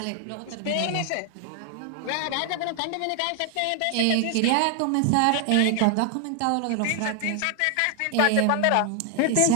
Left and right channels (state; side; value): different; both; correlation 0.00